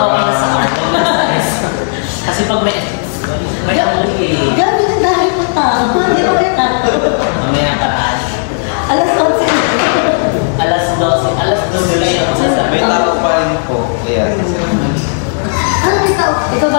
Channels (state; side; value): silent; right; digital silence